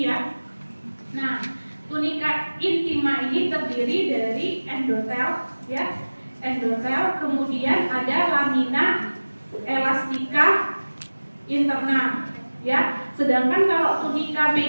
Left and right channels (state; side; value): inverted; both; correlation -1.00